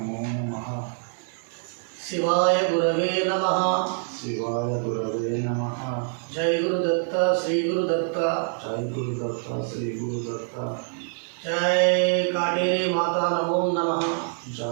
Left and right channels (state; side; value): silent; left; 61 dB below the other